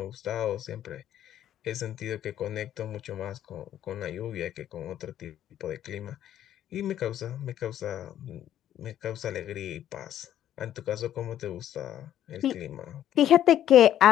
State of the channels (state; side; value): quieter; right; 11.4 dB